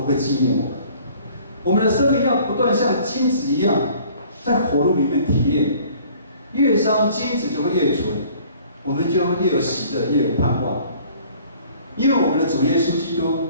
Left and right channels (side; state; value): both; inverted; correlation -0.53